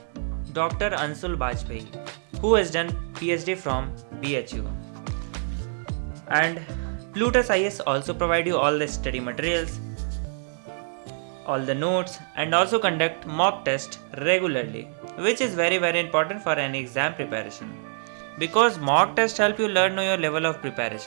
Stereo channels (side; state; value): left; silent; digital silence